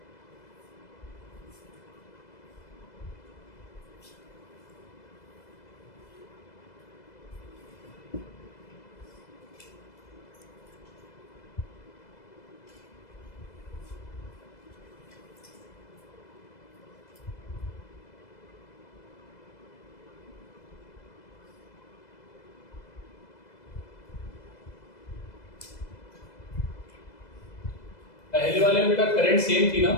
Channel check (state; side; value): late; right; 2.0 ms